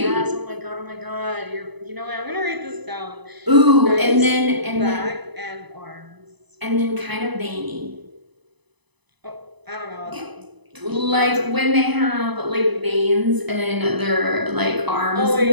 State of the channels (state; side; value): late; left; 1.0 ms